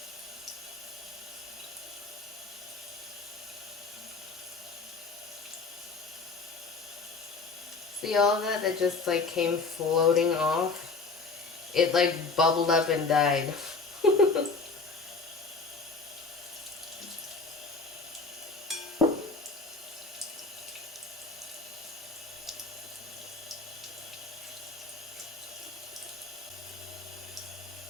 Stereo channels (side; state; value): right; quieter; 4.1 dB